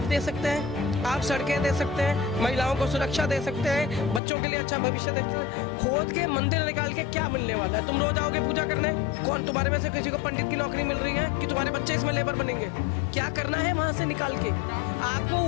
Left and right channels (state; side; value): drops out; right; at 4.2 s